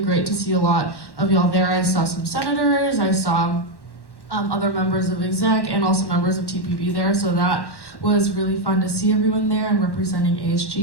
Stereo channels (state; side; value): late; right; 1.1 ms